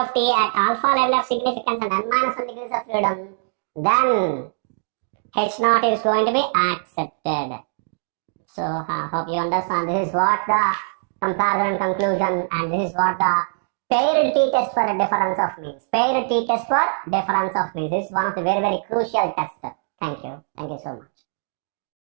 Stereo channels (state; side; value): silent; left; digital silence